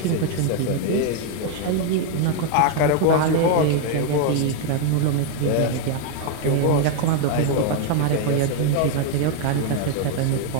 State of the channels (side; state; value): both; different; correlation 0.01